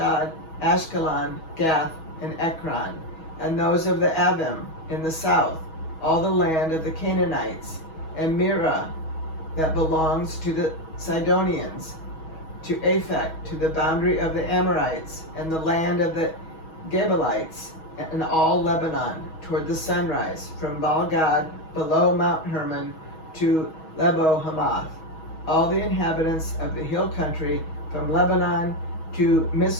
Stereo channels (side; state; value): right; late; 6.3 ms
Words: Ashkelon, Gath, and Ekron, and those of the Avim in the south, all the land of the Canaanites, and Mirah that belongs to the Sidonians, to Aphek, to the boundary of the Amorites, and the land of the Gebalites, and all Lebanon, toward the sunrise, from Baal-gad below Mount Hermon to Lebo Hamath, all the inhabitants of the hill country, from Lebanon to